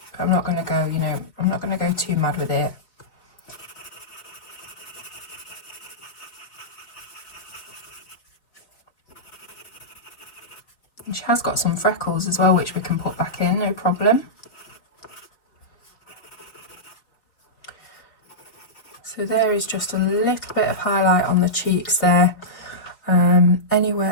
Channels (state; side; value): late; right; 4.0 ms